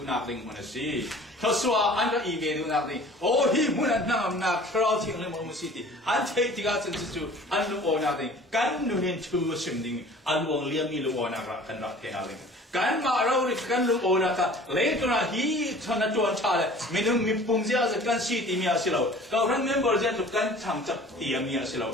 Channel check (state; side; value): normal; both; correlation 0.46